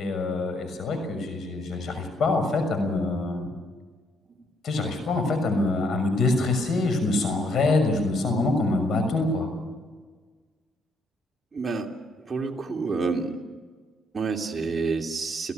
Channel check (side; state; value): both; normal; correlation 0.71